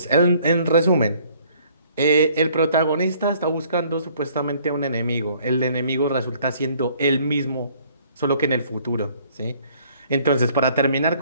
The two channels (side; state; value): both; inverted; correlation -0.59